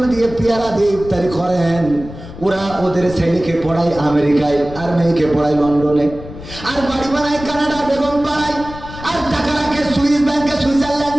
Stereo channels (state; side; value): noise; left; rumble, 14 dB below the sound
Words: দিয়ে পেয়ারা দিয়ে ইফতারি করেন, ওরা ওদের ছেলেকে পড়ায় আমেরিকায়, আর মেয়েকে পড়ায় লন্ডনে, আর বাড়ি বানায় কানাডা বেগম পাড়ায়, আর টাকা রাখে সুইস ব্যাংকে